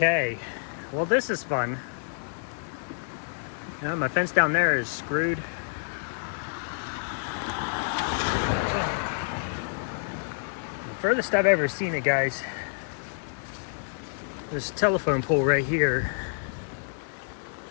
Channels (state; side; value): silent; right; digital silence